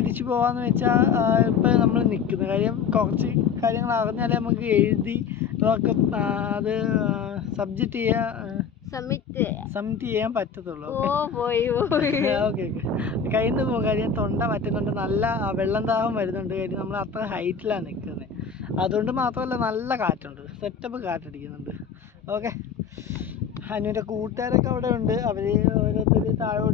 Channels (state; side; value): quieter; right; 6.6 dB